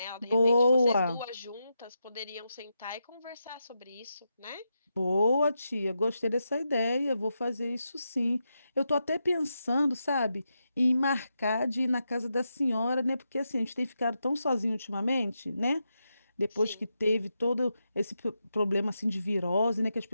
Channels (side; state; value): both; inverted; correlation -0.86